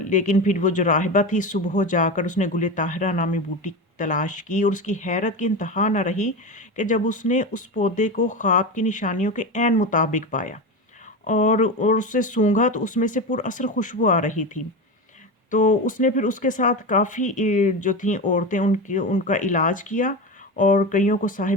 لیکن پھر وہ جو راہبہ تھی، صبح جا کر اس نے گل طاہرہ نامی بوٹی تلاش کی، اور اس کی حیرت کی انتہا نہ رہی کہ جب اس نے اس پودے کو خواب کی نشانیوں کے عین مطابق پایا اور اسے سونگھا تو اس میں سے پر اثر خوشبو آ رہی تھی۔ تو اس نے پھر اس کے ساتھ کافی جو تھیں عورتیں، ان کا علاج کیا، اور کئیوں کو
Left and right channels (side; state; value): both; normal; correlation 0.21